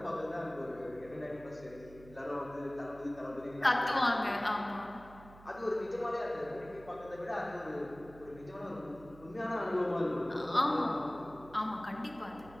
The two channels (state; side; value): noise; right; hum, 19 dB below the sound